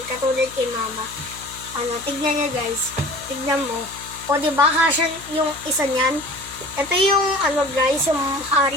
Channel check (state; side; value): noise; left; hum, 18 dB below the sound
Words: Katulad kay mama. Tignan nyo guys. Tignan mo. O, diba, kasya yung isa niyan. Ito yung, guys, yung